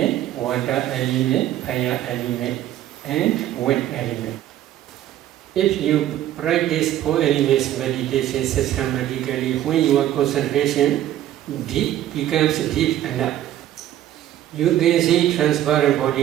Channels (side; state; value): left; quieter; 12.6 dB